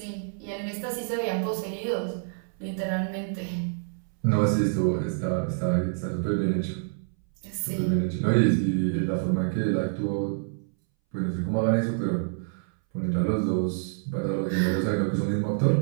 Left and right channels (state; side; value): silent; left; 60 dB below the other